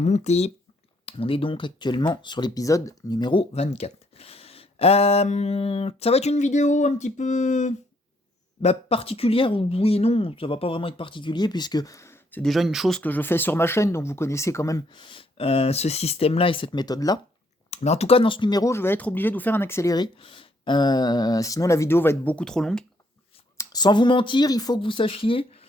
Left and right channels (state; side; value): normal; both; correlation 0.70